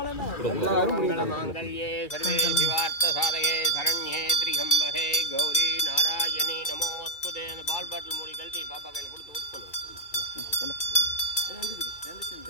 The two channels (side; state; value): right; late; 2.5 ms